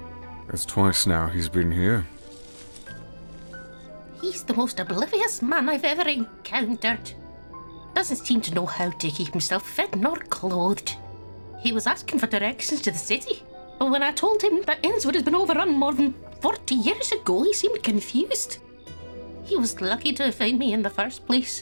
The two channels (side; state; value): both; inverted; correlation -1.00